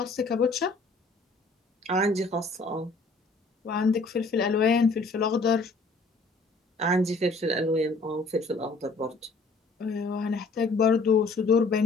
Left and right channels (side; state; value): right; quieter; 3.5 dB